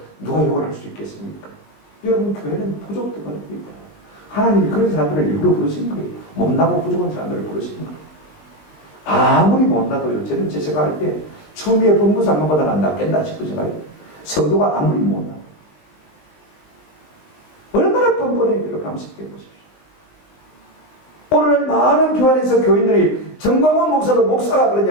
누가 욕을 할 수 있겠습니까? 여러분 교회는 부족들입니다. 하나님이 그런 사람들을 일부러 부르신 거예요. 못나고 부족한 사람들을 부르신 거예요. 아무리 못나도요. 저는 제 생각할 때 추미애 법무장관보다 낫겠나 싶은 생각이에요. 성도가 아무리 못나 얼마나 뻔뻔해 여러분 한번 생각해 보십시오. 오늘 많은 교회 안에서 교인들이 정광훈 목사도 목사가 그런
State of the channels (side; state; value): right; late; 19 ms